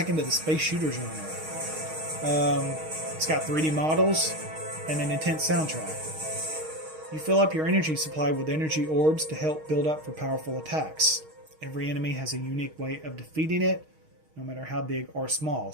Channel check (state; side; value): late; left; 6.4 ms